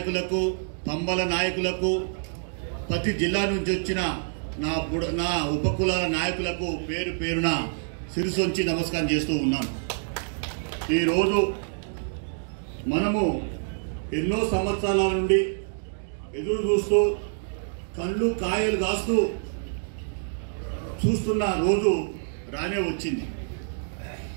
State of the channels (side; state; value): left; silent; digital silence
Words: పంబల నాయకులకు, ప్రతి జిల్లా నుంచి వచ్చిన నా ఉపకులాల నాయకులకు పేరు పేరున శిరసొంచి నమస్కారం చేస్తూ ఉన్నాను. ఈరోజు మనము ఎన్నో సంవత్సరాల నుండి ఎదురు చూస్తూ కళ్ళు కాయలు కాస్తూ చూస్తున్న రోజు రానే వచ్చింది.